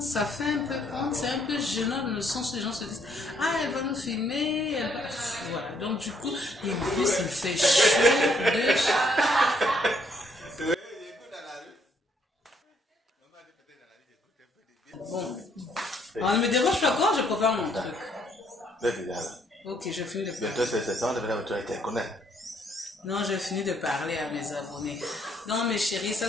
ça fait un peu honte, c'est un peu gênant dans le sens où les gens se disent « Ah, elle va nous filmer, elle va... » Voilà, donc du coup, et en plus, il fait chaud de... Bon, alors, ne me dérange pas quand je prépare mon truc. Ok, je finis de parler. Non, je finis de parler à mes abonnés. Non, mes chéris, ça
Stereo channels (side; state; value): both; normal; correlation 0.69